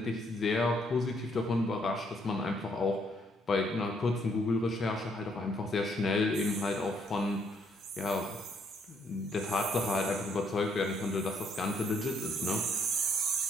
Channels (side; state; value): both; normal; correlation 0.69